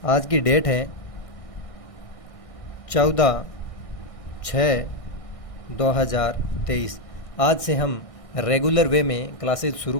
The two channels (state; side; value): late; right; 1.6 ms